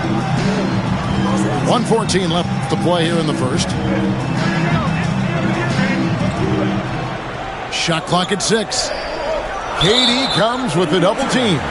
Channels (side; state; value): both; identical; correlation 1.00